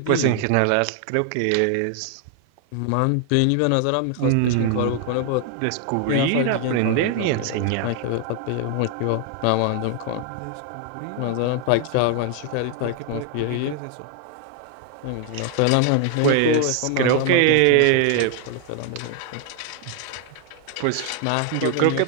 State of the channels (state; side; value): different; both; correlation 0.00